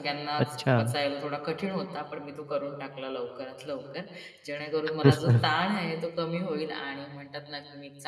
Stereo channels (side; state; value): both; identical; correlation 1.00